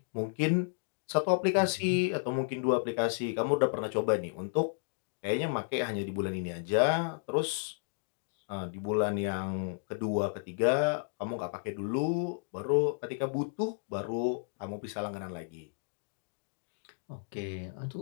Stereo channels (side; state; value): right; silent; digital silence